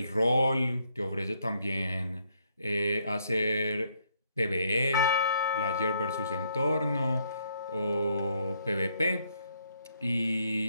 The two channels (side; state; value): both; inverted; correlation -0.71